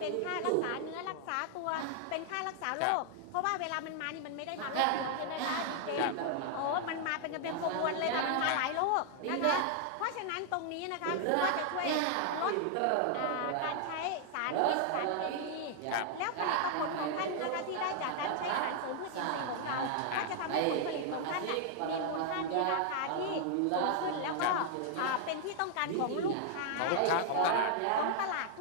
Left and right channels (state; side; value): different; both; correlation 0.00